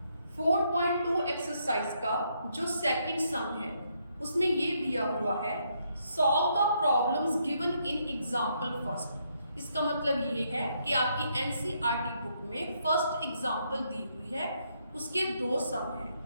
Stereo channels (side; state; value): both; inverted; correlation -0.75